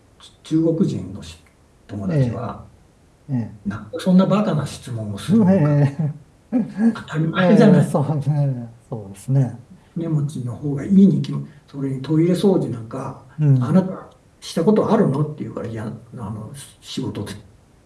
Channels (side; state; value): both; identical; correlation 1.00